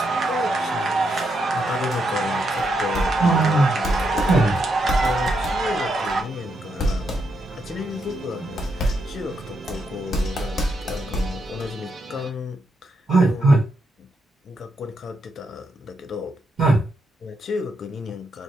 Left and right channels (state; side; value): normal; both; correlation 0.80